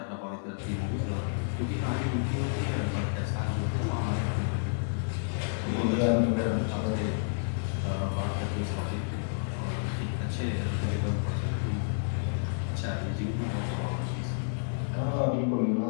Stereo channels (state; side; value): silent; right; digital silence